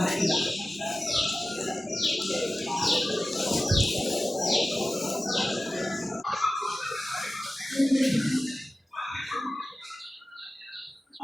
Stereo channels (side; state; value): both; normal; correlation 0.95